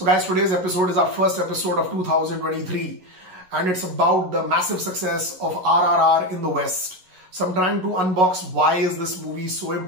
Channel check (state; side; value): late; left; 11 ms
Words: guys, today's episode is our first episode of 2023. And it's about the massive success of RRR in the West. So I'm trying to unbox why is this movie so